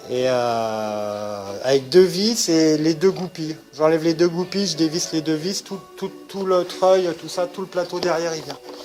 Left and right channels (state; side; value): identical; both; correlation 1.00